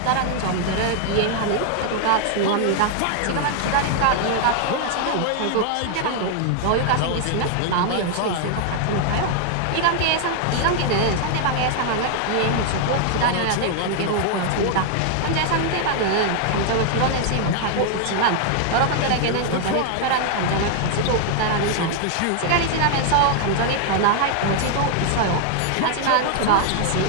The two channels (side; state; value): both; different; correlation 0.00